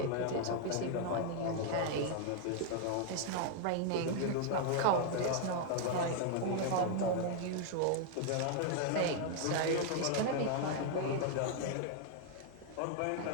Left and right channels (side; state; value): both; different; correlation 0.00